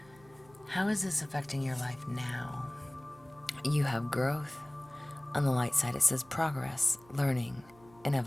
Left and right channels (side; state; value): right; noise; hum, 26 dB below the sound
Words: How is this affecting your life now? You have growth. On the light side, it says progress, learning, and